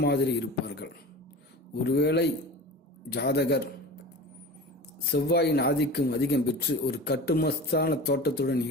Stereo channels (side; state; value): both; normal; correlation 0.34